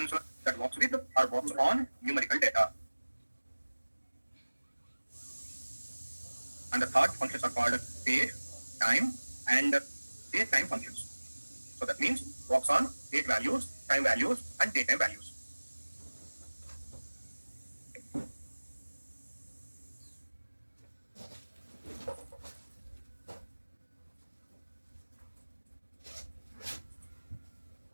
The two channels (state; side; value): inverted; both; correlation -1.00